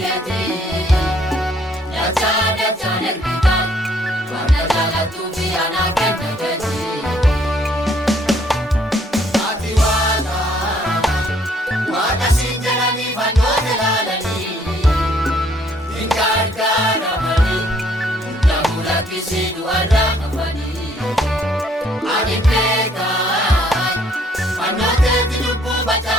keeti dachaan ergita wanta jaalatu fi ana kenna keeti ati waaqa siin jedhanii fannoota ilaalanii hin gargaaramanii namula kisii du'arraa hafanii ani beekan fannooteeti lubbuu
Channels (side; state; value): both; normal; correlation 0.65